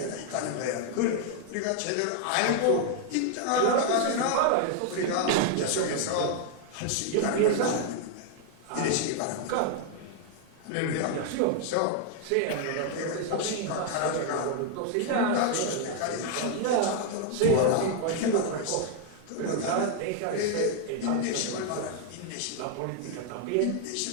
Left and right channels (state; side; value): different; both; correlation 0.00